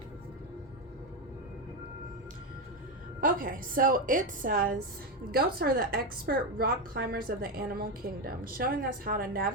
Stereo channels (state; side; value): normal; both; correlation 0.11